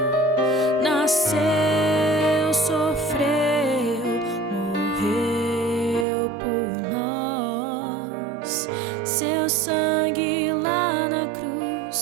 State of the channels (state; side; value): drops out; left; at 6.1 s